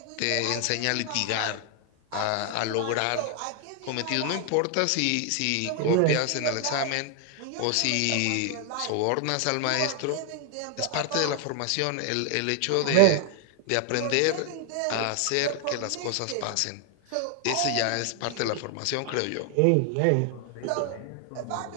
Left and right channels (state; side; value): different; both; correlation 0.00